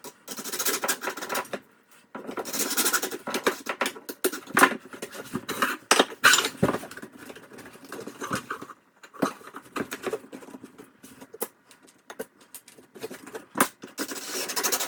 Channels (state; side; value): identical; both; correlation 1.00